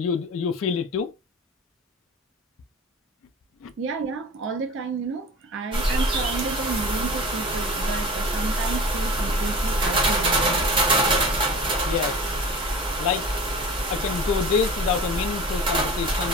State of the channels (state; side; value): normal; both; correlation 0.35